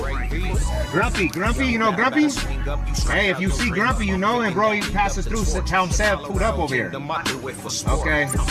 you know Grumpy? Hey, if you see Grumpy, you know him, bro. He passes through, tell him Sev pulled up over here. Okay,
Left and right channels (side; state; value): both; identical; correlation 1.00